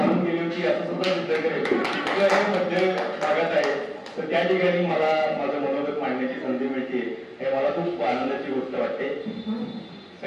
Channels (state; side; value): identical; both; correlation 1.00